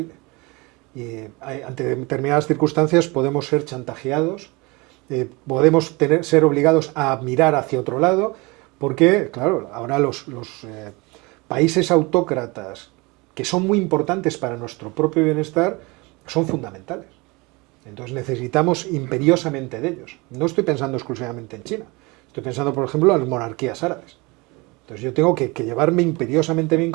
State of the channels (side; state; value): left; quieter; 25.6 dB